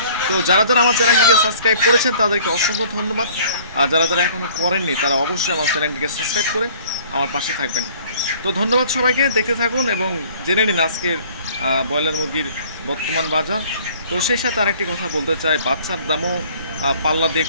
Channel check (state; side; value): inverted; both; correlation -0.53